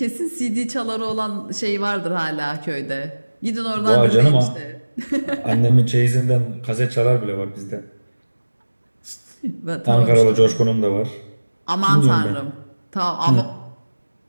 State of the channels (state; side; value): inverted; both; correlation -1.00